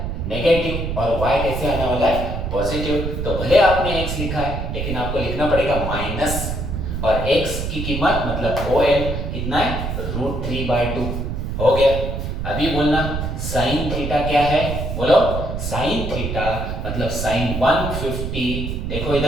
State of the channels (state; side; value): noise; right; rumble, 3 dB below the sound